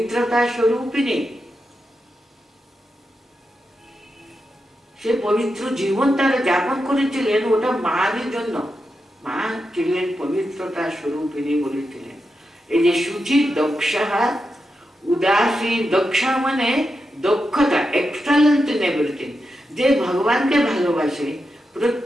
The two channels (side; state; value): both; normal; correlation 0.88